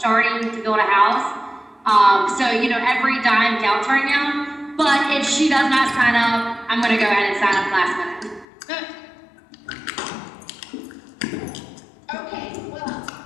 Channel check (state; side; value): drops out; right; at 8.5 s